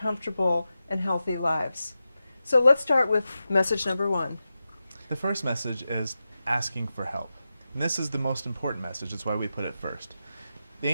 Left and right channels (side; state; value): both; inverted; correlation -0.91